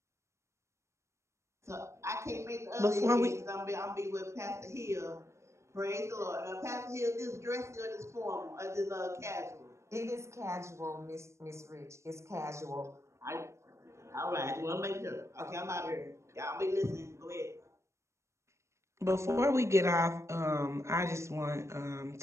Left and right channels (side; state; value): left; late; 0.14 ms